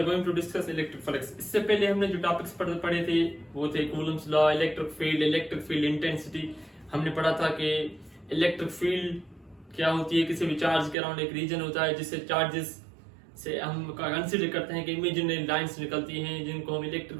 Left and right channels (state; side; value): drops out; left; at 11.0 s